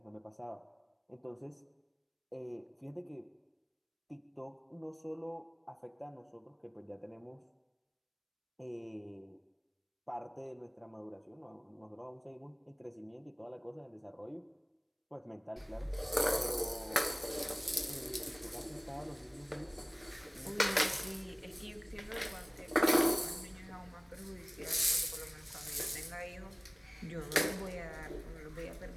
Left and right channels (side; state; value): both; identical; correlation 1.00